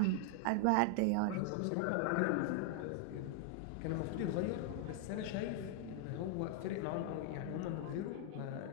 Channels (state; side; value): different; both; correlation 0.00